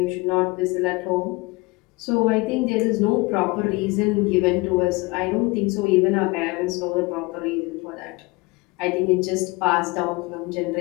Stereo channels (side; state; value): right; quieter; 24.3 dB